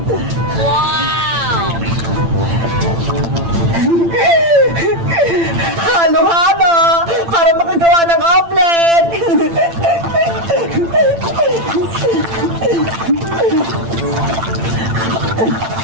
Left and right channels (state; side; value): late; left; 8.9 ms